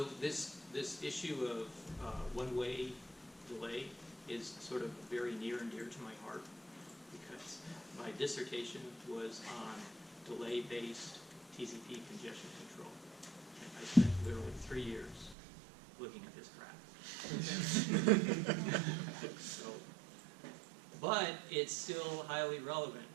this issue of one-way delay is sort of very near and dear to my heart because my dissertation was on delay-based TCP congestion control. And I spent literally 3 years looking at this graph. But it's still highly relevant.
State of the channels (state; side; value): drops out; left; at 15.4 s